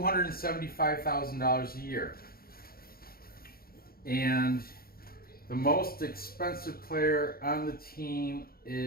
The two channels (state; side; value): late; right; 0.44 ms